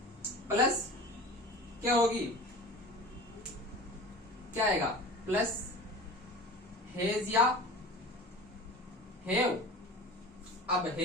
प्लस क्या होगी, क्या आएगा, प्लस हेज या हेव। अब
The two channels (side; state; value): both; normal; correlation 0.37